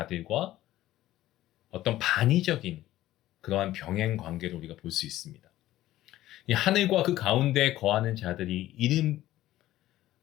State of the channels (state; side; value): quieter; right; 14.8 dB